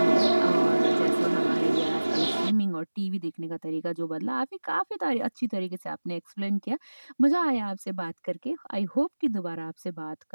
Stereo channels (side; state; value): both; inverted; correlation -1.00